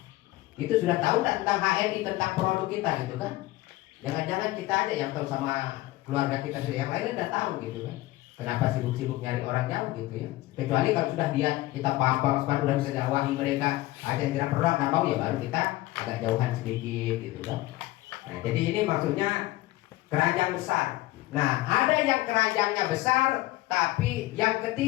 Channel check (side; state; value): right; quieter; 18.1 dB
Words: Itu sudah tahu tentang HNI, tentang produk kita gitu kan. Jangan-jangan kita aja yang tahu sama keluarga kita sendiri, yang lainnya udah tahu gitu kan. Kenapa sibuk-sibuk nyari orang jauh gitu ya. Kecuali kalau sudah dia kita paham udah bisa dakwahi mereka, ada yang tidak perlu nggak mau ya baru kita agak jauhan sedikit gitu kan. Nah jadi ini maksudnya keranjang besar. Nah, ada yang keranjangnya besar, tapi yang